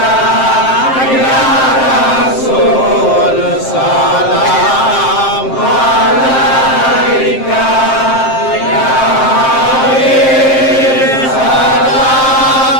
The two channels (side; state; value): right; late; 7.6 ms